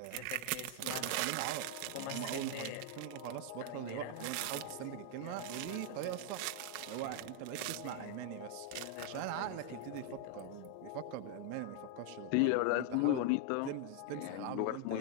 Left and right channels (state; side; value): different; both; correlation 0.00